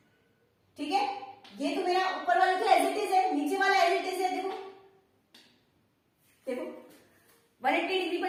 ठीक है। ये तो मेरा ऊपर वाला तो एज इट इज है, नीचे वाला एज इट इज है, देखो देखो 180 डिग्री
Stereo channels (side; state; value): both; identical; correlation 1.00